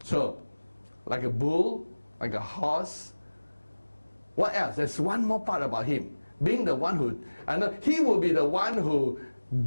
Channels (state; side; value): inverted; both; correlation -1.00